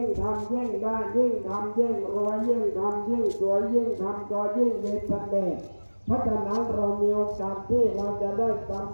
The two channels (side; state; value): both; inverted; correlation -1.00